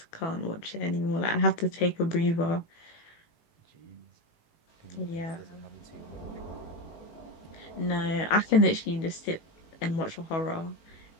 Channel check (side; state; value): right; late; 18 ms